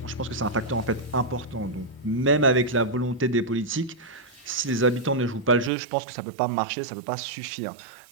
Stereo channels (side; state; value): left; drops out; at 5.7 s